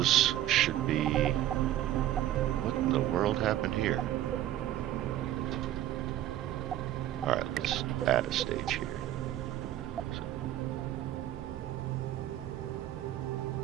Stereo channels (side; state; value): left; quieter; 13.1 dB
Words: should be... What in the world happened here? Alright, let's add a stage here.